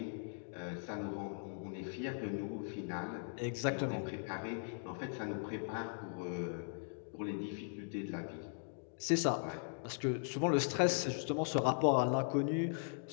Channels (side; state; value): right; silent; digital silence